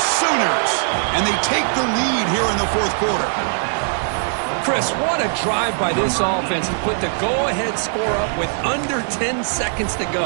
Sooners. And they take the lead here in the fourth quarter. Chris, what a drive by this offense to put the go-ahead score up with under 10 seconds to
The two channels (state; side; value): silent; left; digital silence